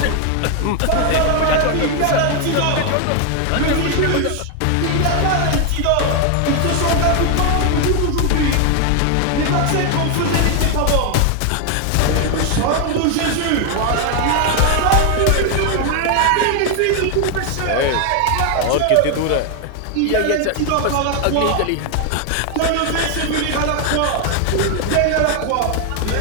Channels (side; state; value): both; different; correlation 0.00